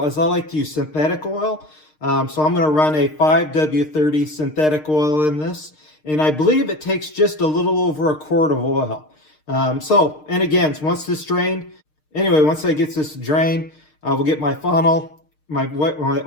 is I like to use synthetic oil. So I'm going to run a 5W30 synthetic oil in this. And I believe it takes just a little over a quart of oil. And again, once this drained, once I get this drained, I will get my funnel, my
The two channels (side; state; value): right; late; 6.5 ms